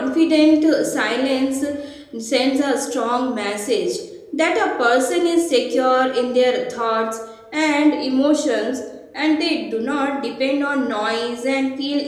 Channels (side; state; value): both; identical; correlation 1.00